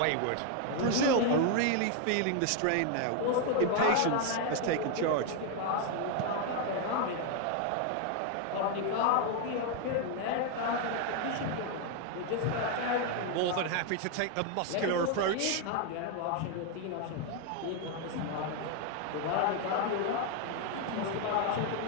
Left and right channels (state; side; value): different; both; correlation 0.01